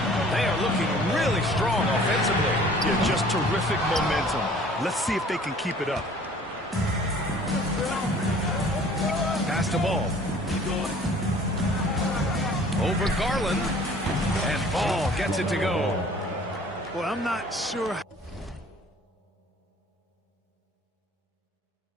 They are looking really strong offensively. Yeah, just terrific momentum. Let's see if they can keep it up. Pass the ball. Over Garland. And Ball gets it to go. Well, I'm not sure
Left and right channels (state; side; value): normal; both; correlation 0.51